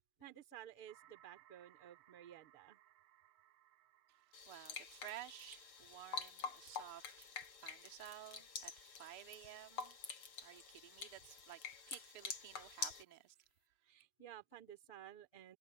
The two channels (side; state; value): right; late; 6.8 ms